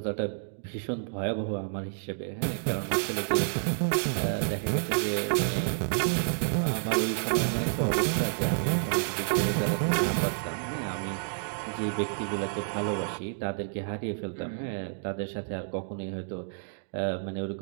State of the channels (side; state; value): left; silent; digital silence